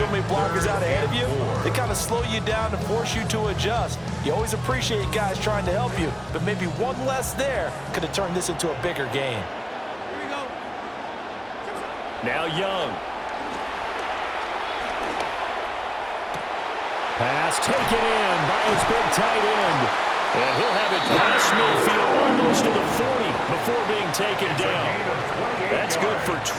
many blockers out ahead of you, they kind of slow you down and force you to adjust. You always appreciate guys trying to help you, but maybe one less there could have turned this into a bigger game. Now Young. Pass taken in by his big tight end. And he'll have it past midfield almost to the 40 before being taken down. That's good for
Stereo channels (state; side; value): identical; both; correlation 1.00